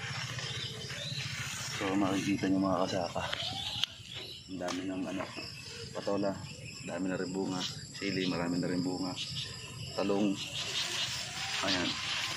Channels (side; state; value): both; identical; correlation 1.00